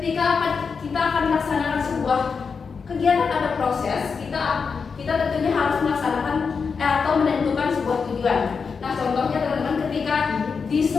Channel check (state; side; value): quieter; right; 5.5 dB